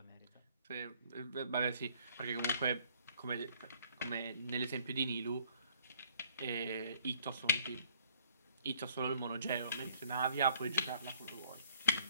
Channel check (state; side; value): inverted; both; correlation -0.59